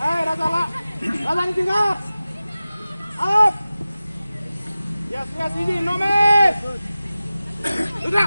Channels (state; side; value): inverted; both; correlation -0.96